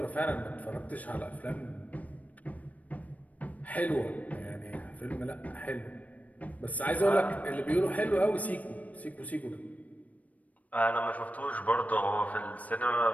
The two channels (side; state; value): right; late; 0.071 ms